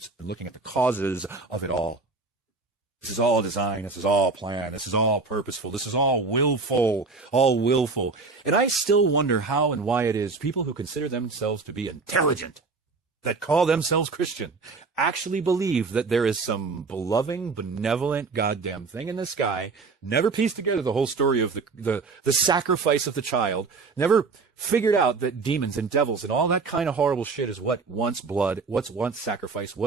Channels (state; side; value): quieter; left; 4.2 dB